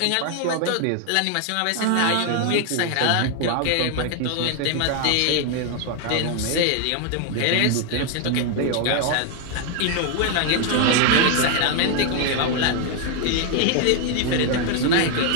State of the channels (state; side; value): different; both; correlation 0.00